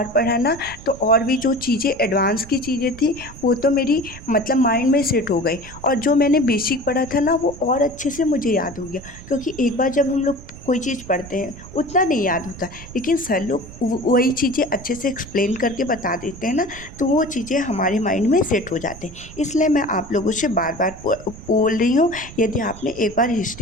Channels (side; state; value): right; noise; rumble, 16 dB below the sound